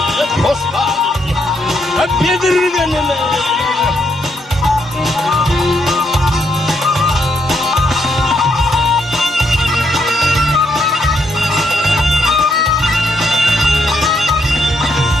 hoş geldin hep yedirgenime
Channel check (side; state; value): both; normal; correlation 0.76